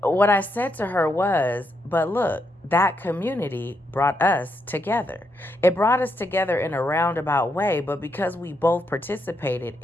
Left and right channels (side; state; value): both; normal; correlation 0.80